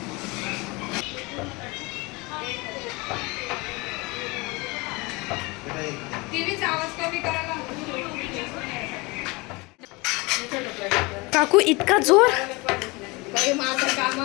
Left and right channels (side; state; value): right; quieter; 25.4 dB